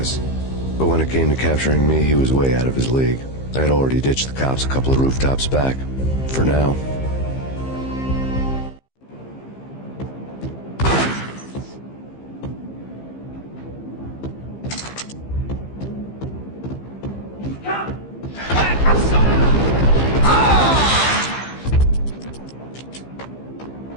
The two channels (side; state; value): right; late; 15 ms